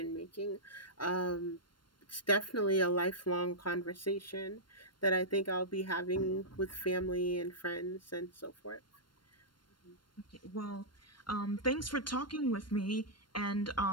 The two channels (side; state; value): right; late; 0.72 ms